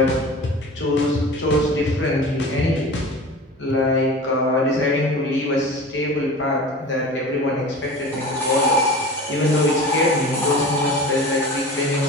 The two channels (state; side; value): normal; both; correlation 0.36